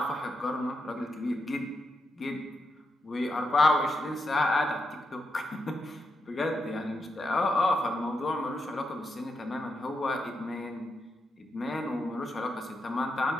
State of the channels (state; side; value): normal; both; correlation 0.84